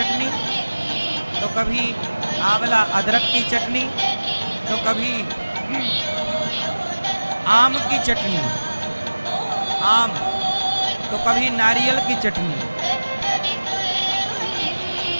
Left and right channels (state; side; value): inverted; both; correlation -1.00